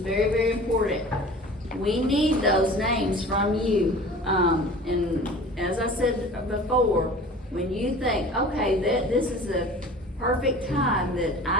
very important. We need those names from you. And as I said before, when you think, okay, this is a perfect time that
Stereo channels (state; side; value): normal; both; correlation 0.42